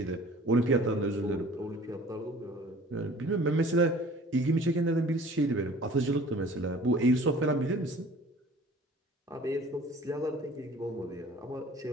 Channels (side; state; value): both; normal; correlation 0.48